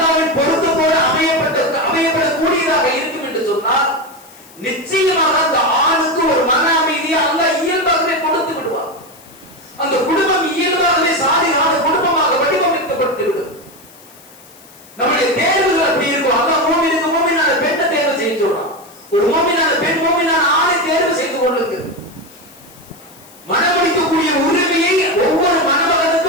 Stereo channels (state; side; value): noise; left; hiss, 24 dB below the sound